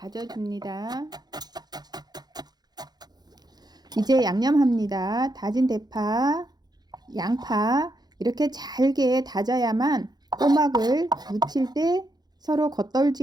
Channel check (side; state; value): left; late; 0.20 ms